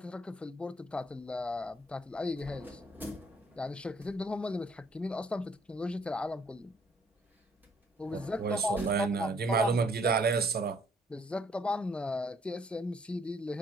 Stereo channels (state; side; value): normal; both; correlation 0.64